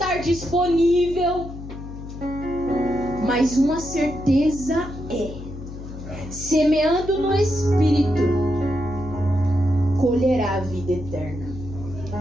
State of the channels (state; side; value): noise; left; hum, 11 dB below the sound